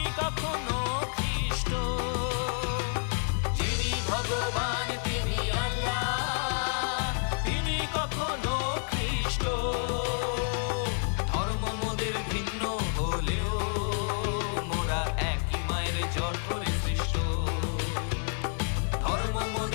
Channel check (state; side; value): silent; right; 55 dB below the other